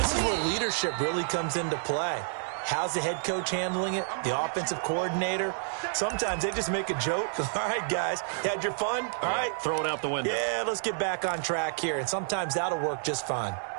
is where leadership really comes into play. How's the head coach handling it? The offensive coordinator? Sometimes they just make a joke. All right, guys, you had your fun? All right. Throw it out the window. Yeah, let's get back on track here. And sometimes that'll work just fine.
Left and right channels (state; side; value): silent; left; digital silence